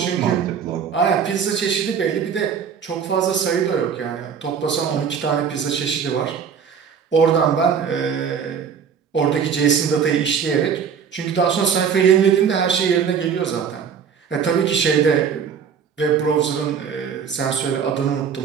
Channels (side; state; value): left; quieter; 7.0 dB